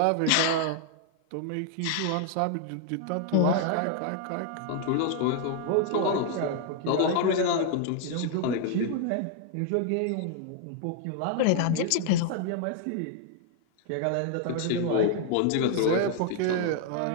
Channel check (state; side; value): different; both; correlation 0.00